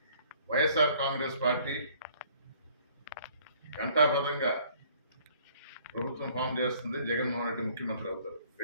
వైఎస్ఆర్ కాంగ్రెస్ పార్టీ ఘంటాపథంగా ప్రభుత్వం ఫామ్ చేస్తుంది. జగన్మోహన్ రెడ్డి ముఖ్యమంత్రి అవుతారు.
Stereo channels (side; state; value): both; inverted; correlation -0.58